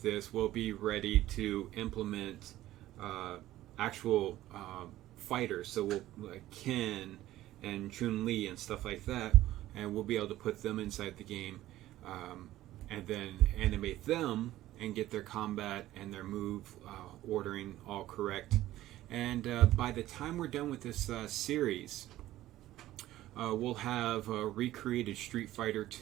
this, we'll be ready to implement actual fighters. So we'll like Ken and Chun-Li and stuff like that, and we'll be able to put them inside the game, and then animate them and get their combat and their move ordering all correct. And by the time we're done with this series, we'll have recreated Street Fighter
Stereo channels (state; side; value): quieter; left; 14.9 dB